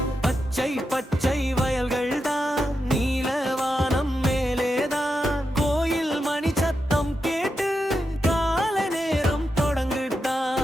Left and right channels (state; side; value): normal; both; correlation 0.87